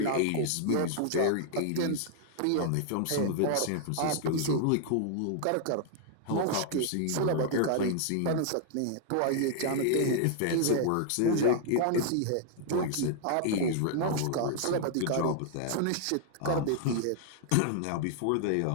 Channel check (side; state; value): both; different; correlation 0.00